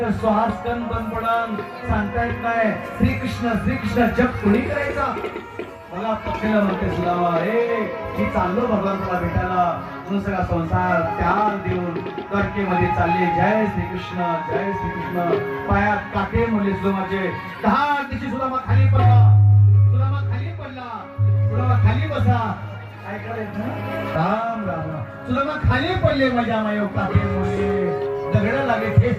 श्वासकण बंद पडन सांगता येत नाही. श्रीकृष्ण जप कोणी करायचा. मला पत्नीला म्हणते सुदामा हे मी चाललो भगवंताला भेटायला म्हणून सगळा संसार त्याग देऊन द्वारकेमध्ये चालले. जय श्रीकृष्ण, जय श्रीकृष्ण. पायात काटे म्हणले सुदामाचे. 10 दिवशी सुदामा खाली पडला. सुदामा खाली पडला. सुदामा खाली बसा. काय करायचं राम राम राम. सुदामा खाली पडले. माझ्या मायो काटे म्हणले दगड लागले,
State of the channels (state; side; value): identical; both; correlation 1.00